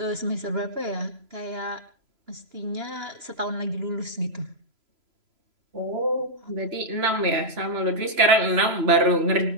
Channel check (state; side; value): late; left; 3.0 ms